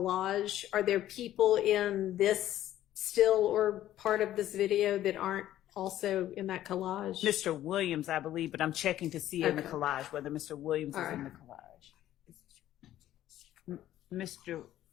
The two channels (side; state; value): right; quieter; 13.0 dB